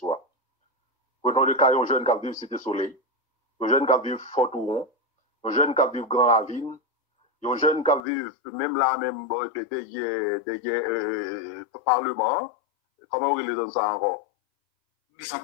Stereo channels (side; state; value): right; drops out; at 8.0 s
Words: Prenons le cas, un jeune qui vit Cité Soleil, un jeune qui vit Fort-Touron, un jeune qui vit Grand Ravine, un jeune qui vit même là, même derrière Parlement. Comment on les donne ça encore?